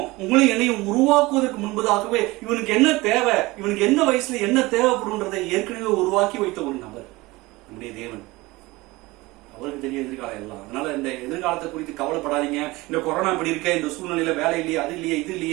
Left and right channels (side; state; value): left; quieter; 21.3 dB